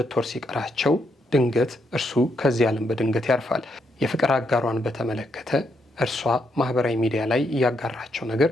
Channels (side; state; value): both; normal; correlation 0.78